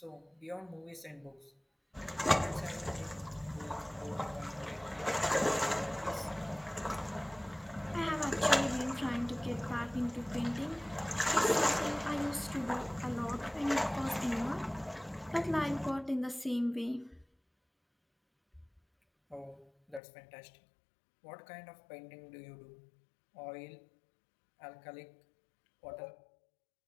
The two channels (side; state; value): right; drops out; at 20.0 s